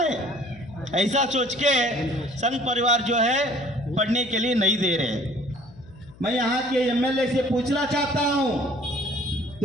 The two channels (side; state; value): left; noise; hum, 23 dB below the sound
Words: ऐसा सोच के संघ परिवार जो है पढ़ने के लिए नहीं दे रहे। मैं यहाँ के एमएलए से पूछना चाहता हूँ,